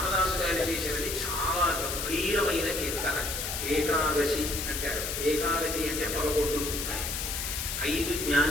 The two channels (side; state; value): left; noise; hiss, 3 dB below the sound